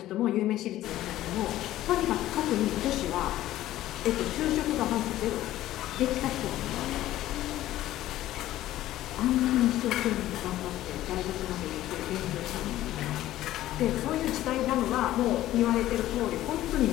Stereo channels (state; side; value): quieter; right; 14.4 dB